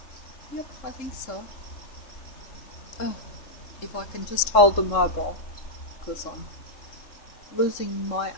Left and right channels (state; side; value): late; right; 3.6 ms